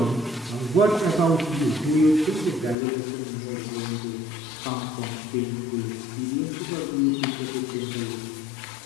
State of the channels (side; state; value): right; drops out; at 2.8 s